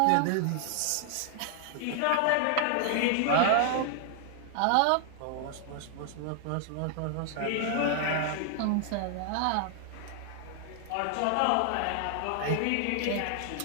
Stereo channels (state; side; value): different; both; correlation 0.00